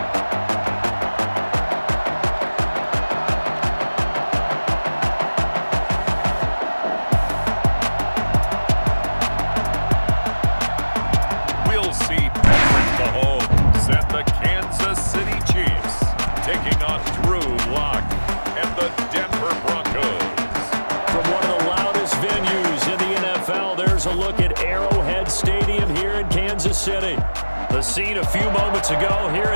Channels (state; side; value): inverted; both; correlation -1.00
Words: A look at Arrowhead Stadium here in Kansas City. The scene a few moments ago, here